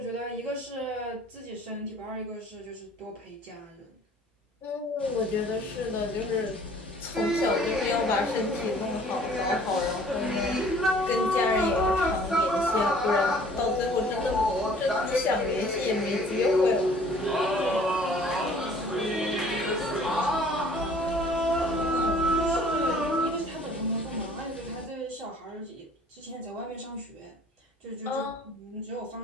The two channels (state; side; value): normal; both; correlation 0.53